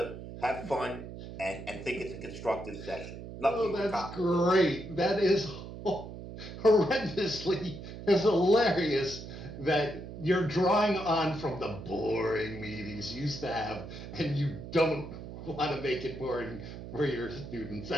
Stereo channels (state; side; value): noise; right; hum, 11 dB below the sound